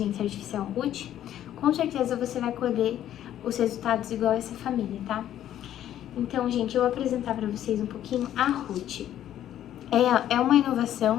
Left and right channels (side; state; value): right; quieter; 11.6 dB